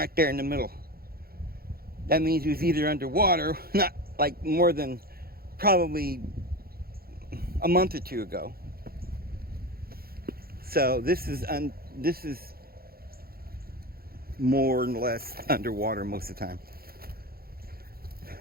there in the middle. That means he was either underwater, not like more than probably a month or two ago. So this is more or less underwater most of the time,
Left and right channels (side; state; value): left; late; 0.44 ms